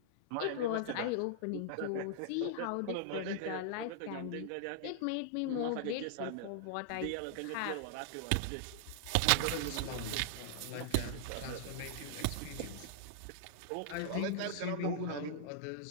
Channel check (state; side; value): different; both; correlation -0.01